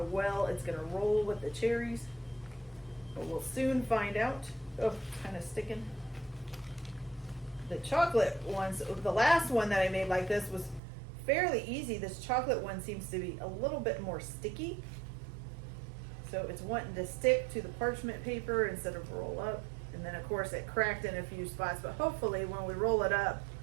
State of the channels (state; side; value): drops out; left; at 10.8 s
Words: well it's going to roll with the cherries, but we'll soon find out. Oh, kind of sticking. The chocolate ones, the last one that I made like this was fairly easy. This chocolate one seems to be a little bit more sticky. So it's wanting to stick to the parchment paper instead of roll up. And then of course it cracked in a few spots, but hopefully when we roll it up,